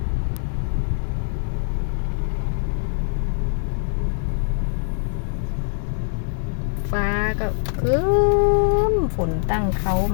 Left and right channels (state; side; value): silent; right; digital silence